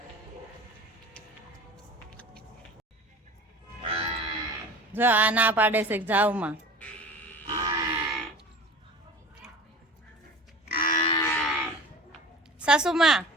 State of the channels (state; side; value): normal; both; correlation 0.39